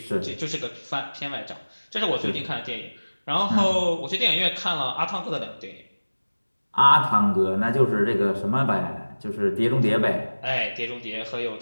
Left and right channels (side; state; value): both; inverted; correlation -1.00